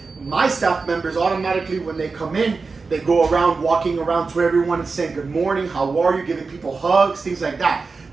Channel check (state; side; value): quieter; left; 4.3 dB